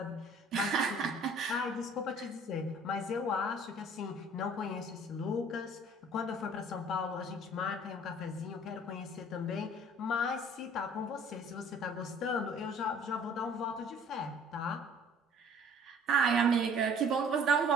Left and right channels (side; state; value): both; normal; correlation 0.53